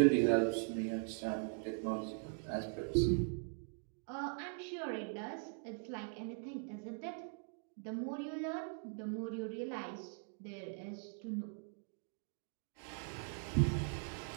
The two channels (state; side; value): silent; left; 50 dB below the other